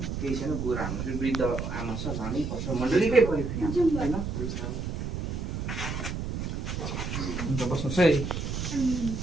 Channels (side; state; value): right; noise; rumble, 4 dB below the sound